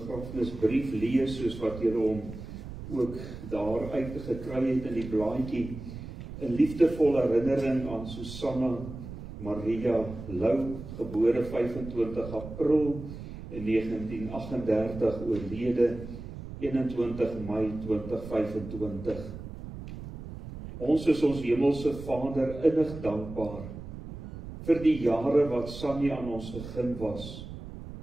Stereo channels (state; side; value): noise; right; rumble, 11 dB below the sound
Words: lees, soos wat julle hom ook daar uitgekry het in die blaadjie. 'n liefdevolle herinnering aan Susanna Maria Lou, gebore 25 April in 1938, oorlede 21 Mei 2025. Ons is ons hemelse Vader innig dankbaar vir die jare wat Sannie aan ons gegeen was.